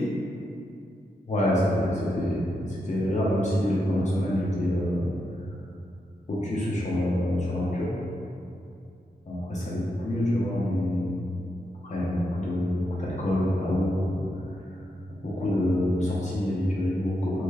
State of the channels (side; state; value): both; normal; correlation 0.84